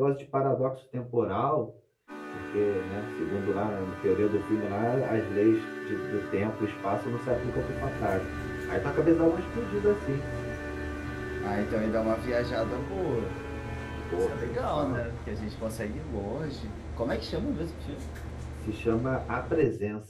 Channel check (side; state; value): both; identical; correlation 1.00